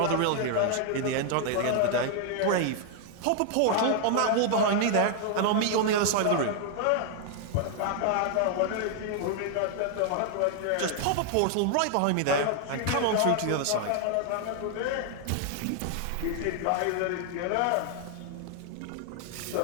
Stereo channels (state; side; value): different; both; correlation 0.00